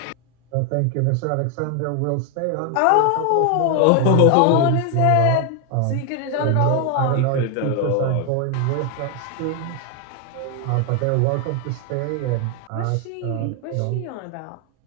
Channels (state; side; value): different; both; correlation 0.00